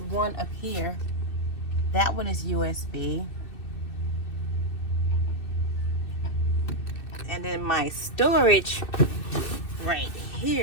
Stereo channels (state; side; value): late; right; 2.6 ms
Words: one up here. That one is USB. And then my storage right